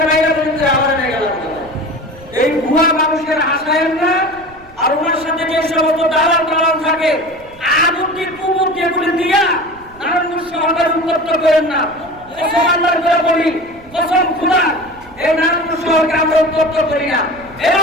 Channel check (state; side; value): noise; right; rumble, 24 dB below the sound